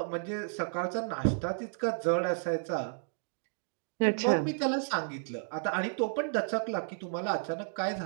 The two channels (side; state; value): left; silent; digital silence